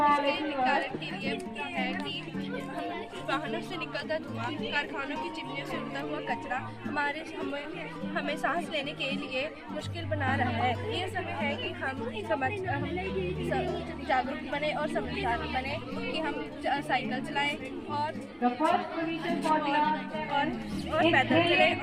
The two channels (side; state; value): both; identical; correlation 1.00